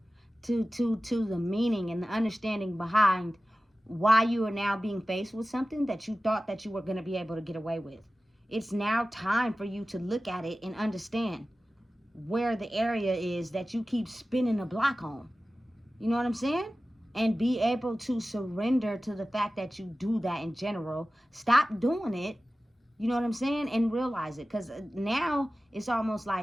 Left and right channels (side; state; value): both; normal; correlation 0.95